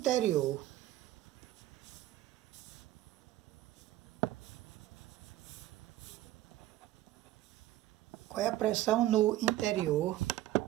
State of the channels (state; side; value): quieter; left; 14.6 dB